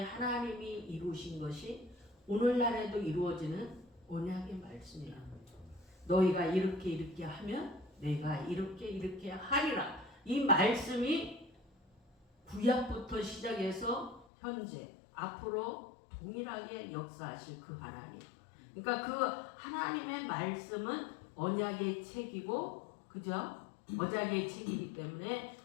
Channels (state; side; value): drops out; right; at 14.2 s